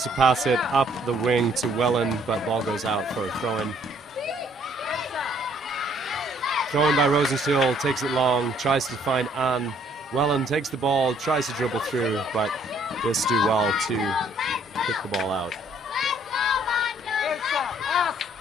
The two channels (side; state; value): both; normal; correlation 0.63